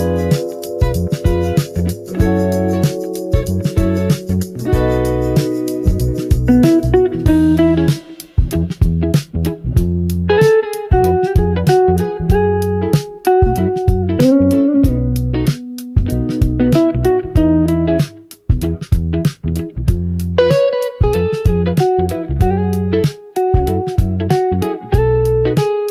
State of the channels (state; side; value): identical; both; correlation 1.00